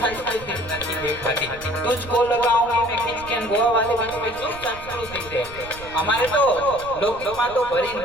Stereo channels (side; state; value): right; noise; rumble, 17 dB below the sound